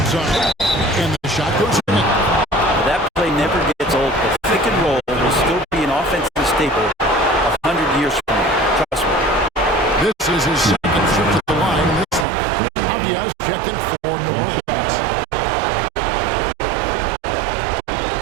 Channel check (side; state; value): left; drops out; at 12.2 s